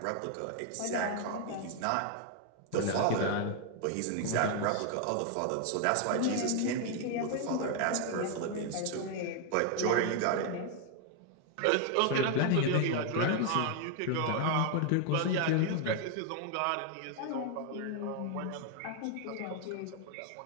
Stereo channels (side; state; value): both; different; correlation 0.00